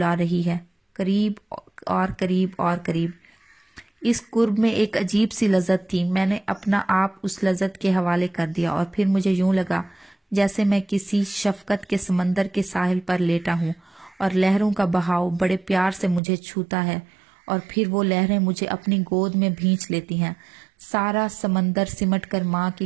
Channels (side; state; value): left; drops out; at 16.2 s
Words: رہی ہے، قریب اور قریب اور قریب۔ اس قرب میں ایک عجیب سی لذت تھی۔ میں نے اپنا آپ اس لذت کے حوالے کر دیا، اور پھر مجھے یوں لگا جیسے میں کسی شفقت کے سمندر کے ساحل پر لیٹا ہوں، اور لہروں کا بہاؤ بڑے پیار سے مجھے چھوتا ہے، اور پھر وہ لہریں مجھے اپنی گود میں بھینچ لیتی ہیں۔ سارا سمندر سمٹ کر ماں